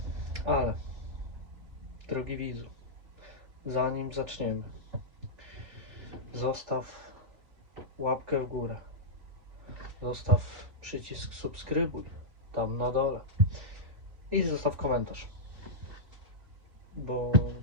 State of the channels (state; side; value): late; left; 3.5 ms